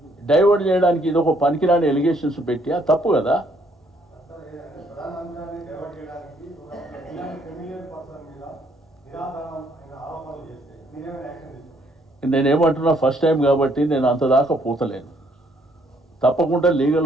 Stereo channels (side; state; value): both; normal; correlation 0.68